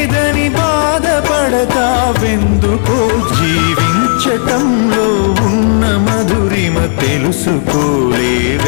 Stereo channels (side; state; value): right; silent; digital silence